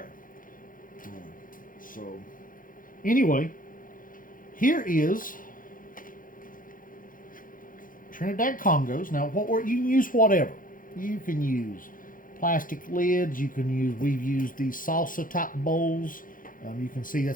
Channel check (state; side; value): late; right; 0.40 ms